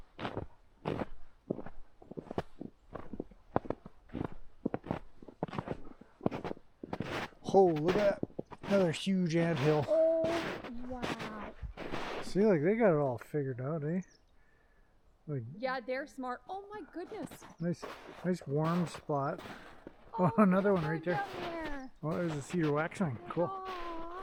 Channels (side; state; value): both; identical; correlation 1.00